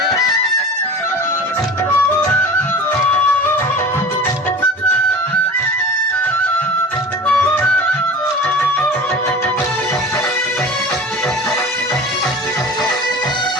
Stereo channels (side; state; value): both; normal; correlation 0.36